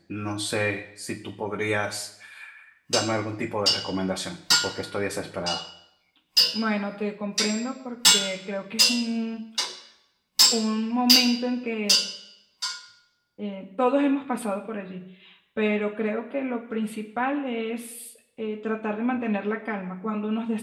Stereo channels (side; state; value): both; identical; correlation 1.00